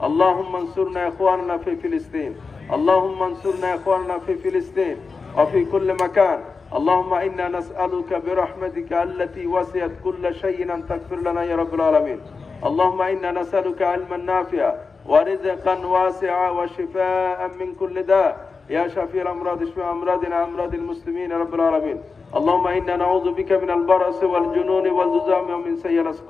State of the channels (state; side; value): quieter; right; 4.6 dB